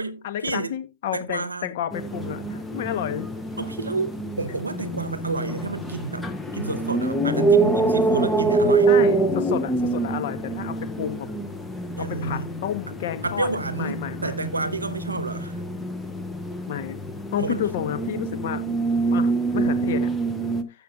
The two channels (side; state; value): both; normal; correlation 0.30